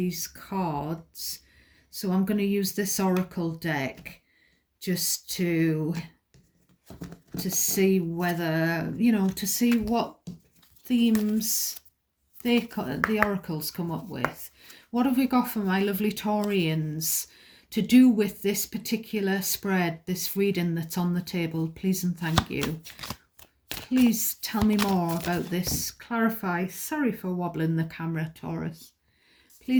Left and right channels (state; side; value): identical; both; correlation 1.00